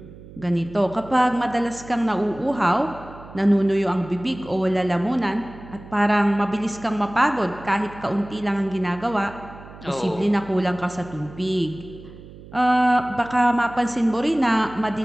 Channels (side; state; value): right; noise; hum, 18 dB below the sound